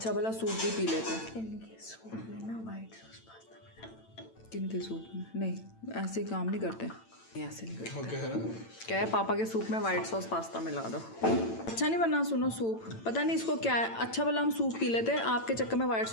भला सूप भी पी लेते। इनके सूप में ना वाइट सॉस पास्ता मिला। किनके सूप में? नहीं ऐसे काम नहीं करते, ऐसे नहीं करते। क्या है पापा के सूप में वाइट सॉस पास्ता मिला दो। अच्छा नहीं बना सुनो सूप, पता नहीं इसको क्या है। अच्छा भला हम सूप पी लेते, आपके चक्कर में वाइट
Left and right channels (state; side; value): late; right; 8.9 ms